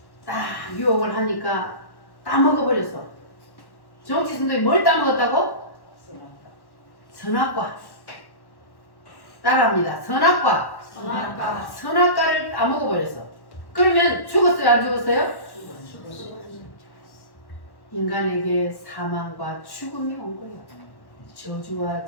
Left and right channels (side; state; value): right; late; 1.1 ms